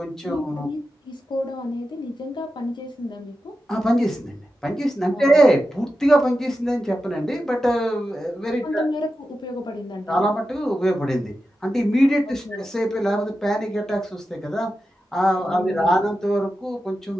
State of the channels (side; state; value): both; normal; correlation 0.91